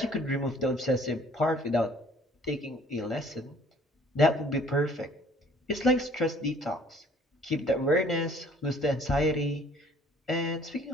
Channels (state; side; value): normal; both; correlation 0.56